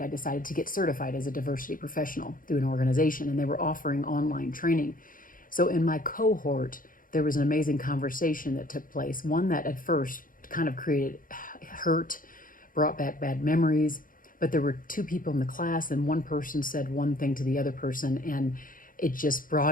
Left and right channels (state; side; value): late; right; 0.40 ms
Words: I decided to get certified as a diversity professional through an organization, and they were offering online training. So in my cohort, there was an amazing conversation that took place, one that at first kind of created hurt, brought back bad memories, but there were two people in the class, and one person said one thing to the other person, and it just